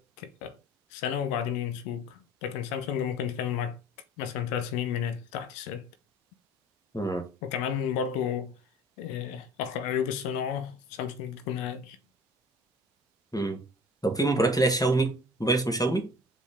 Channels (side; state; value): both; normal; correlation 0.44